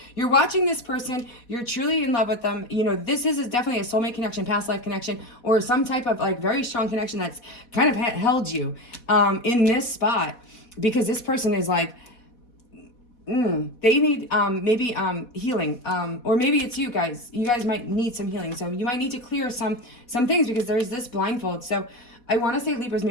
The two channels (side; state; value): right; late; 4.1 ms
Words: you're watching this person. You're truly in love with them. You know, this is definitely a soulmate connection, past life connection, or some type of like very strong connection that's kind of held you in this spot, because this person is like, they need maybe healing, or maybe it's you guys. You guys might need some healing. So you might need to clear some things because there's this blindfold. So I want to say, Libras,